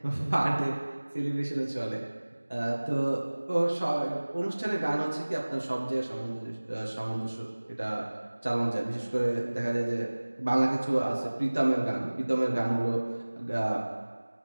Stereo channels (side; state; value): both; inverted; correlation -1.00